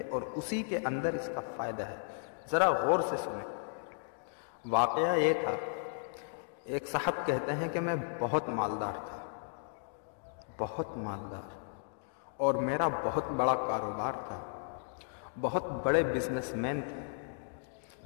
اور اسی کے اندر اس کا فائدہ ہے۔ ذرا غور سے سنیں۔ واقعہ یہ تھا، ایک صاحب کہتے ہیں کہ میں بہت مالدار تھا، بہت مالدار، اور میرا بہت بڑا کاروبار تھا، بہت بڑے بزنس مین تھے۔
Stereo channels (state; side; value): silent; right; digital silence